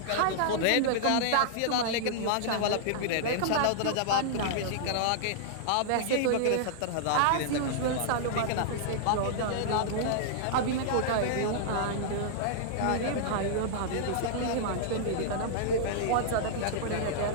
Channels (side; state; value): both; different; correlation -0.02